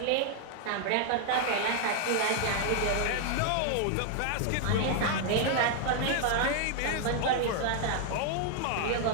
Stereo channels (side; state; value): both; different; correlation 0.00